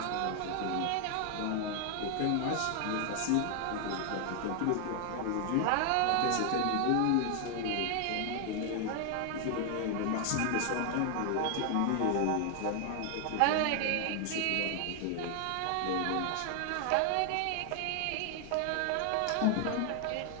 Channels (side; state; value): both; different; correlation 0.00